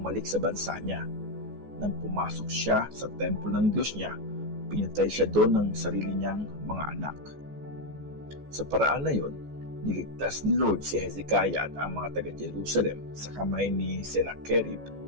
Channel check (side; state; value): left; late; 14 ms